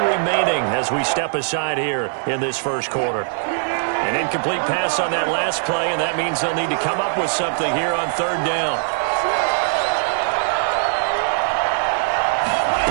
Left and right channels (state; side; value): silent; left; digital silence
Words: as we step aside here in this first quarter. An incomplete pass on that last play, and that means they'll need to come up with something here on 3rd down.